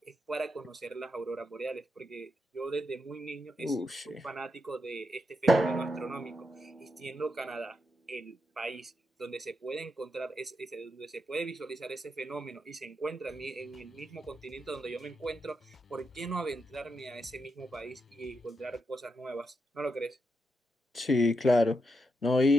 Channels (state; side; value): normal; both; correlation 0.83